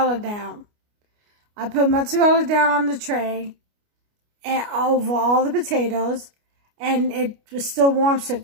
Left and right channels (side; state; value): left; late; 29 ms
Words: down. I put mozzarella down on the tray and over all the potatoes. And it was still warm, so it